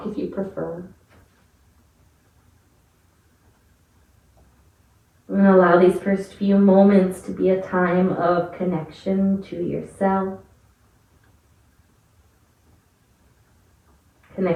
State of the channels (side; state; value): both; identical; correlation 1.00